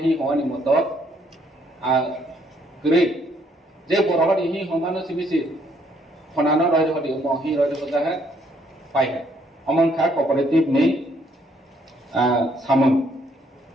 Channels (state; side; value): normal; both; correlation 0.68